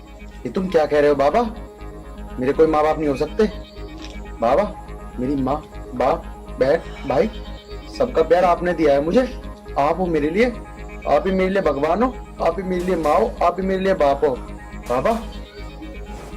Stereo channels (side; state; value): both; identical; correlation 1.00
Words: ये तुम क्या कह रहे हो बाबा? मेरे कोई माँ बाप नहीं हो सकते। बाबा, मेरी माँ, बाप, बहन, भाई, सबका प्यार आपने दिया है मुझे। आप हो मेरे लिए, आप ही मेरे लिए भगवान हो, आप ही मेरे लिए माँ हो, आप ही मेरे लिए बाप हो। बाबा,